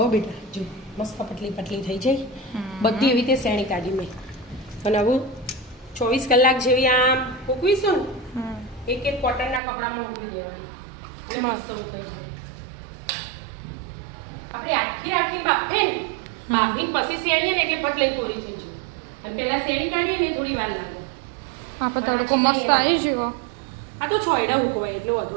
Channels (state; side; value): drops out; left; at 9.6 s